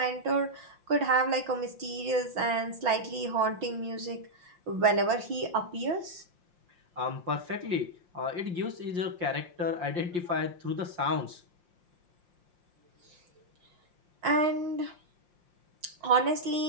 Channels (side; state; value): left; late; 5.7 ms